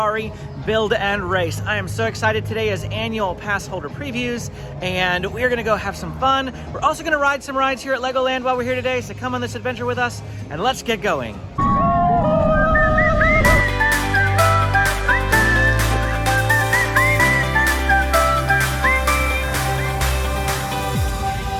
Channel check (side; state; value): both; identical; correlation 1.00